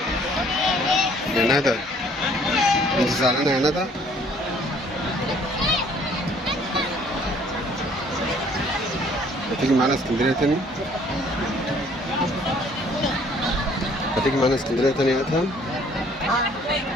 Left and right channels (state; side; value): normal; both; correlation 0.59